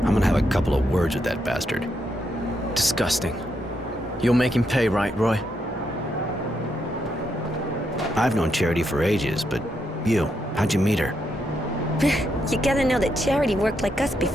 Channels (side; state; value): both; normal; correlation 0.80